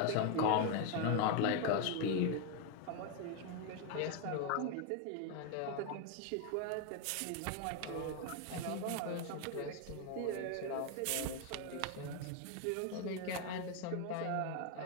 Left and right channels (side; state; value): both; different; correlation 0.01